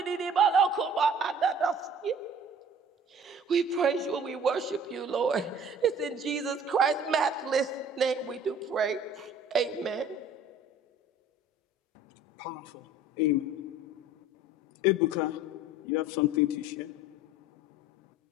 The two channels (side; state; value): both; normal; correlation 0.48